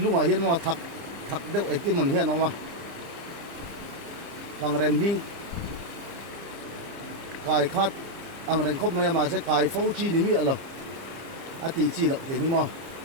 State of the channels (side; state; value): left; late; 30 ms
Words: mà hiện mà thắc đeo ấy cái mình hiện mà bằng rem li cài khát ang rem khop mà sẽ cài phâu chi ní mi alo tí chi lộc thế mà